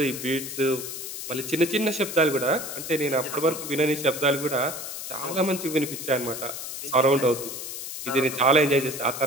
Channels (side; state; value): left; noise; hiss, 7 dB below the sound